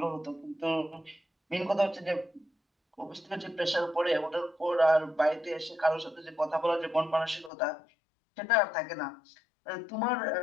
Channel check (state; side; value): drops out; right; at 7.5 s